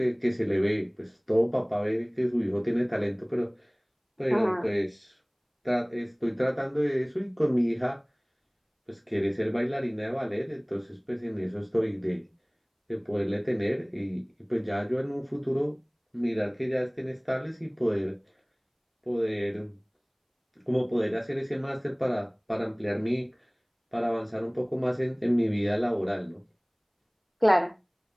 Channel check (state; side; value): identical; both; correlation 1.00